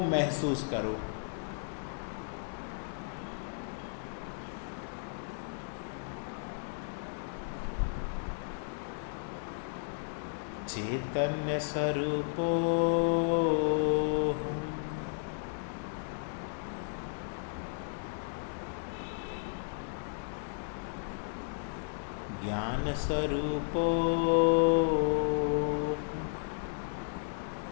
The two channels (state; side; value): silent; right; digital silence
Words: महसूस करो। चैतन्य स्वरूपो ज्ञान स्वरूपो